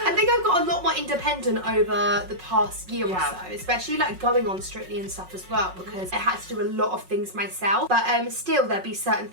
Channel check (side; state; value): left; late; 5.4 ms